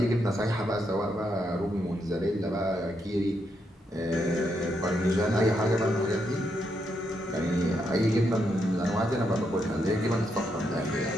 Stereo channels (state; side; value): normal; both; correlation 0.80